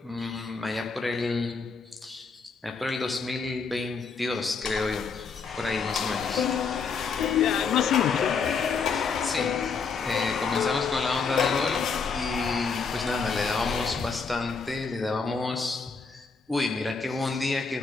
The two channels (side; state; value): right; quieter; 5.1 dB